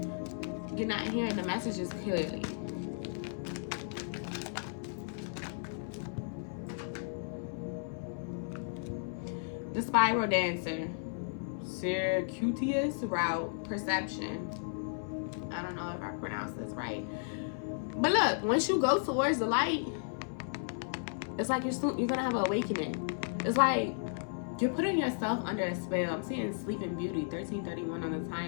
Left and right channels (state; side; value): silent; right; 55 dB below the other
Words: you're not hearing the messages clearly. The spiral dancer, circuitous route, perception. I don't know if I pronounced this right. But look, once you go towards the light, it's like you're gonna have an awakening. It's like you're putting yourself under a spell. I'm seeing Sleeping Beauty, 13:31 on the